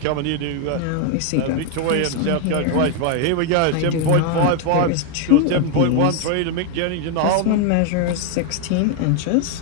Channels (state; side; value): different; both; correlation 0.01